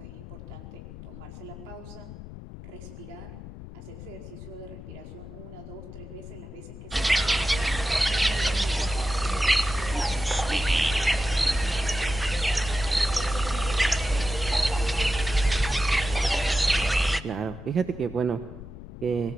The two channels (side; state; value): left; noise; rumble, 13 dB below the sound